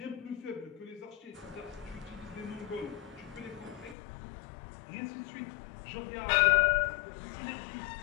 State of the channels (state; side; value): drops out; right; at 4.0 s